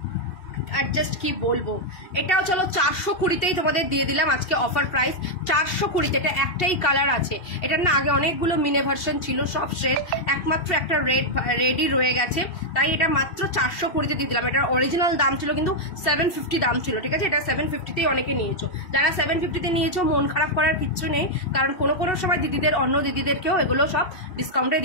আর জাস্ট কি বলবো, এটাও চলো 420-তেই তোমাদের দিয়ে দিলাম আজকে অফার প্রাইস, 420। এটা একটাই কালার আছে, এটার না আগে অনেকগুলো মিনে ভার্সন ছিল, সব শেষ, একমাত্র একটা রেডই রয়ে গেছে, তাই এটা মাত্র 420-তে দিয়ে দিলাম। এটার অরিজিনাল দাম ছিল কিন্তু 750 দাম ছিল। ঠিক আছে, এটা 750-তেই অনেকে নিয়েছো। যারা 750-তে নিয়েছো মন খারাপ করার কিচ্ছু নেই, কারণ কোনো সময় দিদিদের, অন্য দিদিদেরকেও এগুলো সব ডিসকাউন্টে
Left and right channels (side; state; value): right; late; 2.7 ms